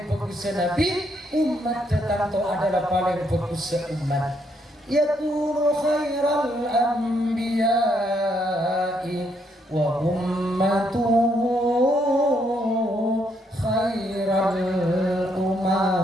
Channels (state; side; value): normal; both; correlation 0.74